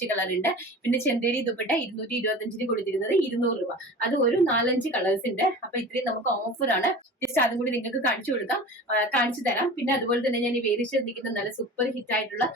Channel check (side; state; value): both; normal; correlation 0.36